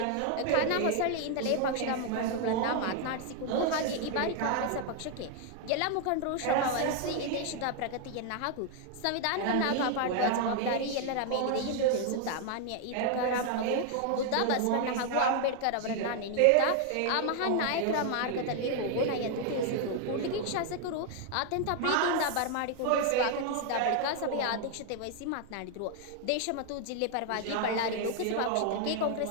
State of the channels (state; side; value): different; both; correlation 0.00